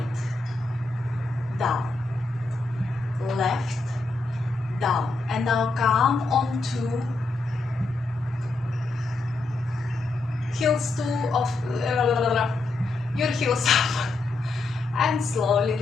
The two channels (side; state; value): right; quieter; 3.3 dB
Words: down. Left, down. And now come onto heels of your heels up and slowly